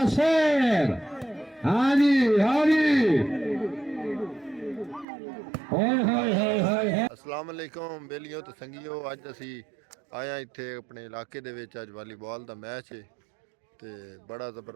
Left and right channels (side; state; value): left; drops out; at 5.1 s